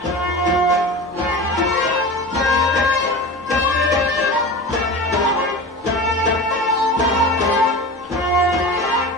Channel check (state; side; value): normal; both; correlation 0.32